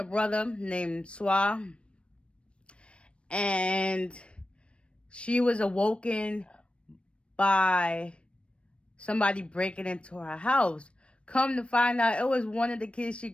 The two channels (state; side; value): late; right; 0.059 ms